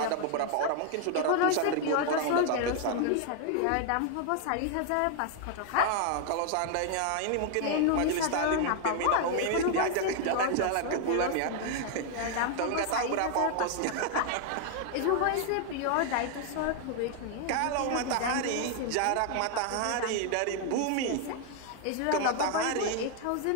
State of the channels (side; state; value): both; different; correlation 0.00